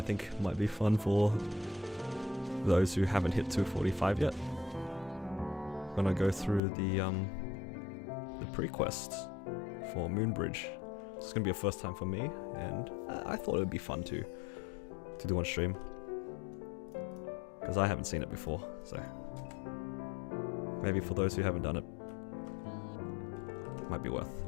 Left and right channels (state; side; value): drops out; right; at 6.6 s